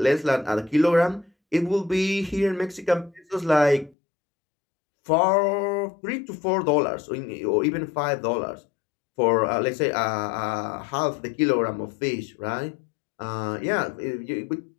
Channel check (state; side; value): drops out; right; at 4.0 s